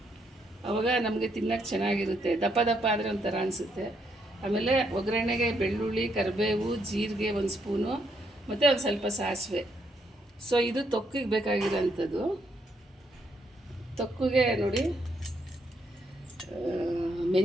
ಆವಾಗ ನಮಗೆ ತಿನ್ನೋಕ್ಕೆ ಚೆನ್ನಾಗಿರುತ್ತೆ. ದಪ್ಪ ದಪ್ಪ ಆದರೆ ಒಂಥರ ಅನಿಸುತ್ತೆ. ಆಮೇಲೆ ಒಗ್ಗರಣೆಗೆ ಬೆಳ್ಳುಳ್ಳಿ, ಕರಿಬೇವು, ಜೀರಿಗೆ 1 ಸ್ಪೂನು ಮತ್ತು ಒಂದು ಸ್ವಲ್ಪ ಸಾಸಿವೆ. ಸೊ ಇದು ತೊಕ್ಕಿಗೆ ಬೇಕಾಗಿರೋಂಥದ್ದು. ತೊಕ್ಕಿಗೆ ನೋಡಿ,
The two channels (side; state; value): both; normal; correlation 0.75